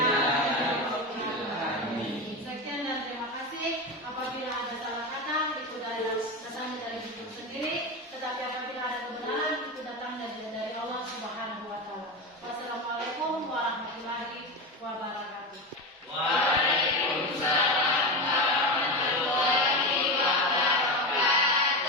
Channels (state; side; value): normal; both; correlation 0.19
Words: Sekian dan terima kasih. pasti apabila ada salah kata itu dari dasarnya dari diri sendiri, tetapi apabila ada